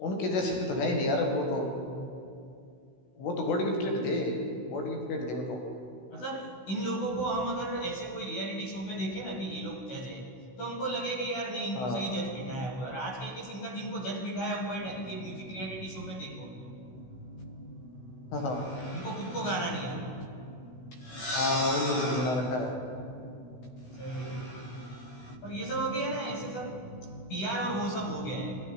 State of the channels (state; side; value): late; right; 16 ms